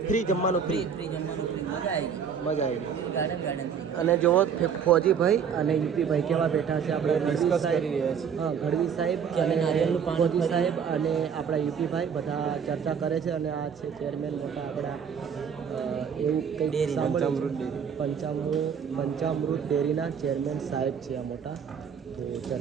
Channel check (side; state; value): left; quieter; 7.1 dB